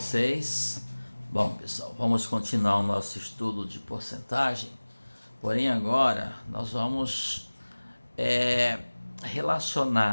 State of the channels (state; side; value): inverted; both; correlation -1.00